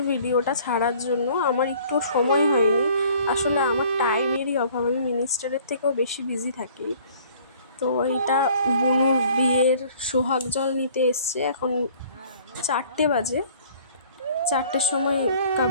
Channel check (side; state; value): both; inverted; correlation -0.54